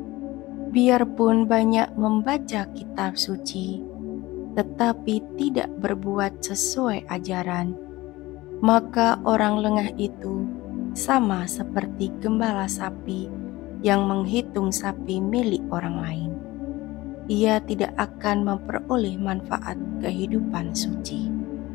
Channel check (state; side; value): quieter; right; 19.2 dB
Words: Biarpun banyak membaca kitab suci, tetapi tidak berbuat sesuai ajaran, maka orang lengah itu sama seperti gembala sapi yang menghitung sapi milik orang lain. Ia tidak akan memperoleh manfaat kehidupan suci.